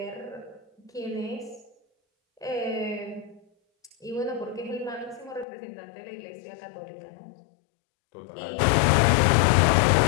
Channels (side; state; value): right; drops out; at 5.5 s